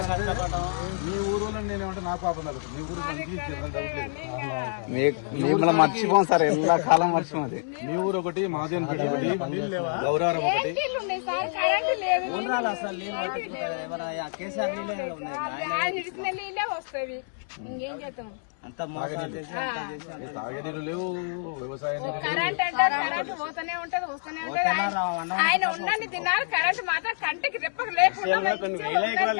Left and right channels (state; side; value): silent; right; 60 dB below the other